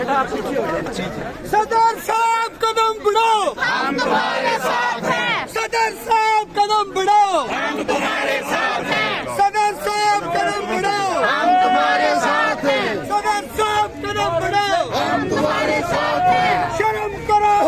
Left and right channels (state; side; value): identical; both; correlation 1.00